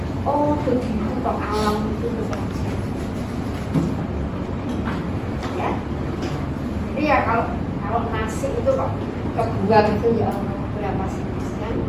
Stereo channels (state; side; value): identical; both; correlation 1.00